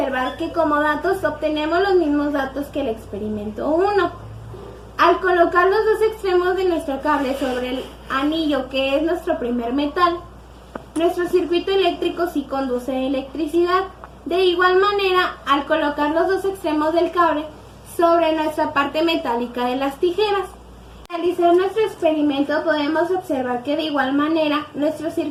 que como datos obtenemos los mismos datos que el experimento 1. Al colocar los dos extremos de nuestro cable sobre el anillo, que es nuestro primer metal, nuestro circuito eléctrico sí conduce electricidad. De igual manera, al colocar los dos extremos del cable sobre nuestra parte metálica de las tijeras, al realizar nuestro experimento podemos observar que de igual manera nuestro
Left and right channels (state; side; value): identical; both; correlation 1.00